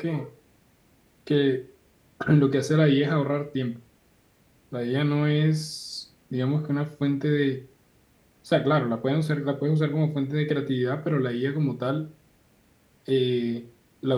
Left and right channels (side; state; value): both; identical; correlation 1.00